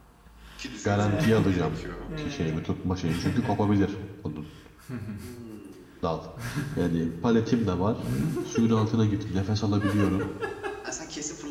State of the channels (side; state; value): both; identical; correlation 1.00